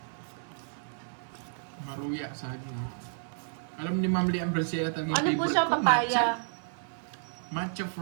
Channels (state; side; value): silent; left; 57 dB below the other